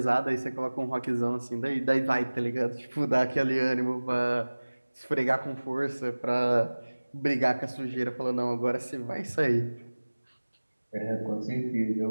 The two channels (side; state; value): both; inverted; correlation -1.00